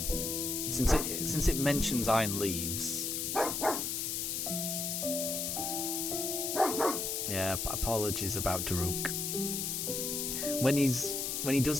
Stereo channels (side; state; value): left; noise; hiss, 1 dB below the sound